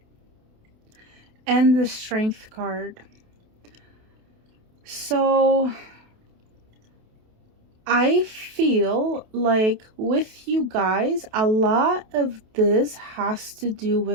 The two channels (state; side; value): late; left; 28 ms